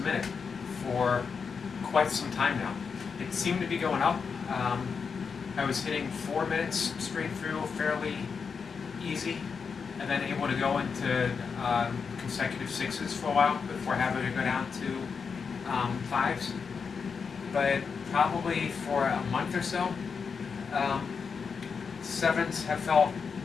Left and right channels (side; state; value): right; quieter; 5.7 dB